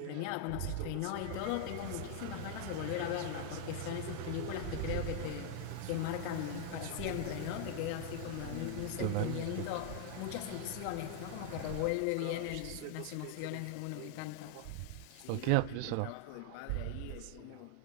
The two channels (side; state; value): both; different; correlation 0.00